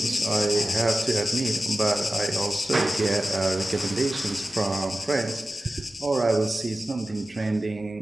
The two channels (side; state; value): both; normal; correlation 0.95